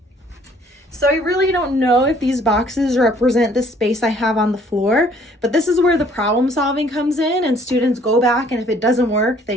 So I really don't know if these boxes represent the space I have on the floor, but this is where the problem solving comes in, and students go back, and if it doesn't work,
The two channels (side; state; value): both; normal; correlation 0.59